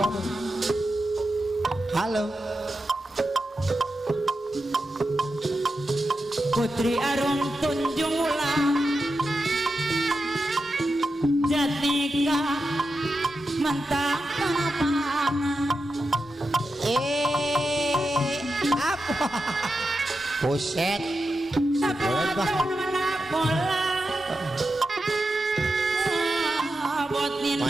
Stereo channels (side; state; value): both; normal; correlation 0.89